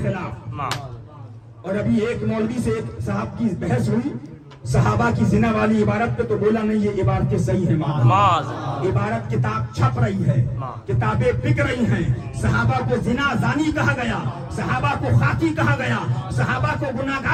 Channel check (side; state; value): both; identical; correlation 1.00